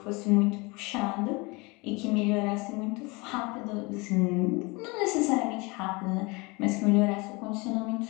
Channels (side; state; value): right; quieter; 26.4 dB